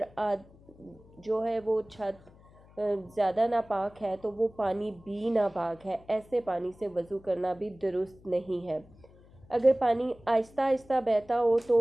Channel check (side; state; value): left; noise; hum, 25 dB below the sound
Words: جو ہے وہ چھت زیادہ ناپاک ہے تو وہ پانی بھی ناپاک ہے، ایسے پانی سے وضو کرنا بھی درست نہیں ہے۔ اگر پانی آہستہ آہستہ بہتا ہو تو